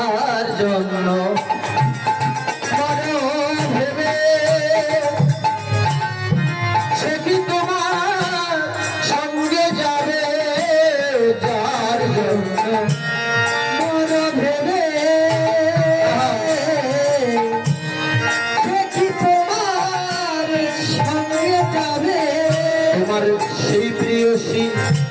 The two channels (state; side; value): identical; both; correlation 1.00